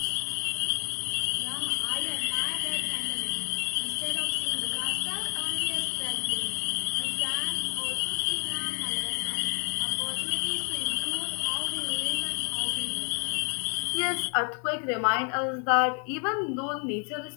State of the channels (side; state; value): right; quieter; 39.9 dB